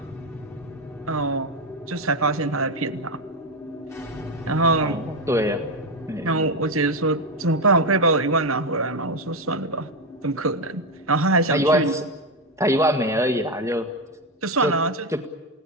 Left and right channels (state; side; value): normal; both; correlation 0.10